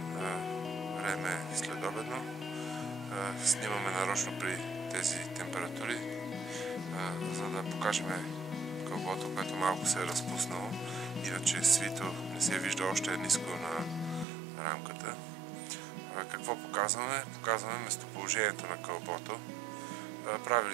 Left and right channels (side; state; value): left; drops out; at 14.2 s